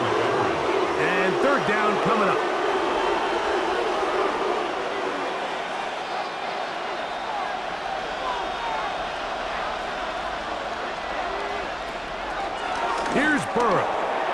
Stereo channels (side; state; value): both; identical; correlation 1.00